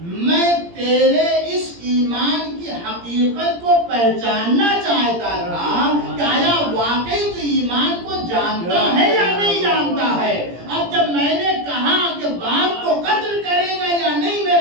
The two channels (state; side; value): late; left; 17 ms